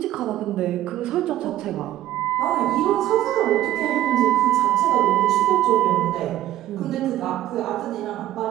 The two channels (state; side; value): quieter; left; 13.6 dB